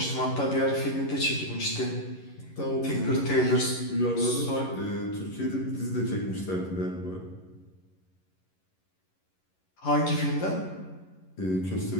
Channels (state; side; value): late; right; 11 ms